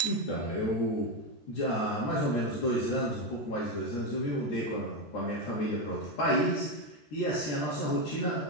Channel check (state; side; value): late; right; 13 ms